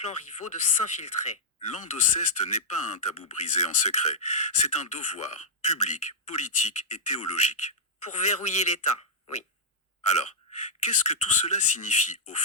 rivaux de s'infiltrer. L'endoceste n'est pas un tabou brisé en secret. C'est un devoir public, politique et théologique. Pour verrouiller l'État, oui. Alors, qu'est-ce que tout cela signifie au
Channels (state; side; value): normal; both; correlation -0.07